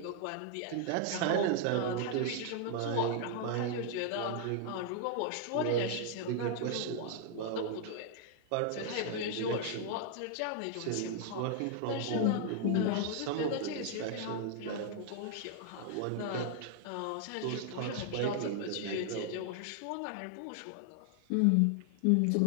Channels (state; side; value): different; both; correlation 0.00